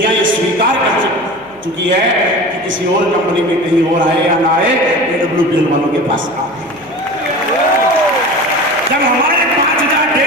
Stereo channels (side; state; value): right; noise; hum, 29 dB below the sound